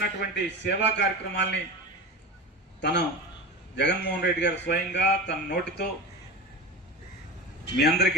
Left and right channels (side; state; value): both; normal; correlation 0.28